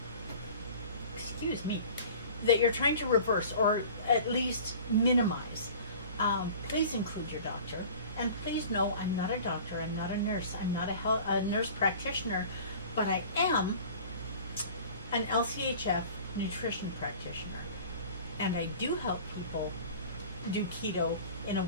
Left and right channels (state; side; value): inverted; both; correlation -0.43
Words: that you're trying to reverse or at least minimize, please include your doctor. And please know, I'm not a doctor, I'm not a nurse, I'm not a nurse practitioner, but I am an LCHF nutrition practitioner. And I do help people do keto in a